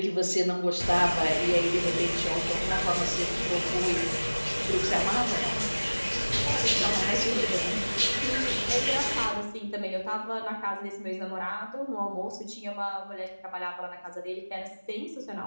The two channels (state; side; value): inverted; both; correlation -1.00